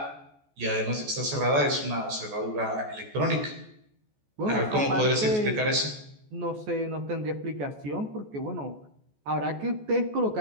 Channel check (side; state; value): left; late; 14 ms